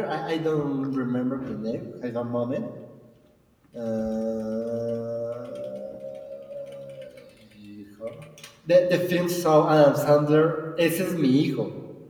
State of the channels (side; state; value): both; identical; correlation 1.00